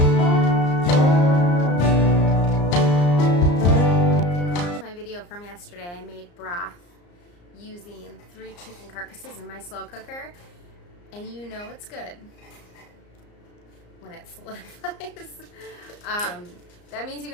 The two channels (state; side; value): late; right; 34 ms